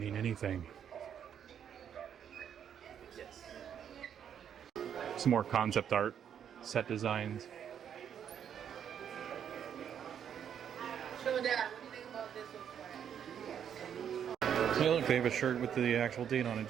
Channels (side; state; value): left; quieter; 8.7 dB